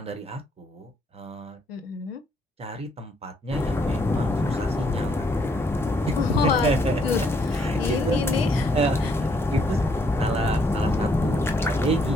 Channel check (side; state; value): both; normal; correlation 0.70